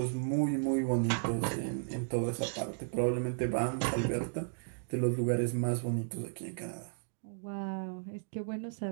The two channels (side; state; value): left; silent; digital silence